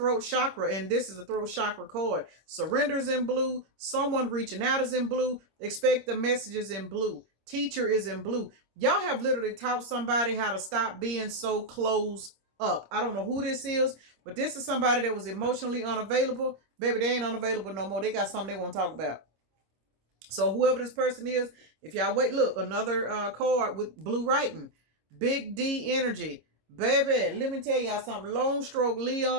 chakra, and this is the throat chakra card. Surrenders in blue. Someone reaching out is in blue. Expect the messages in blue. Teacher is in blue. Y'all have literally taught somebody how to stop being so closed up. I don't know who this is, but this is somebody that was emotionally unavailable. Baby, they ain't unavailable no more. They got something they want to talk about. So whoever this person is, if y'all wait, look, another card with blue writing. Big D energy. Baby, let me tell y'all something. Lone Stroke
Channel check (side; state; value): left; late; 26 ms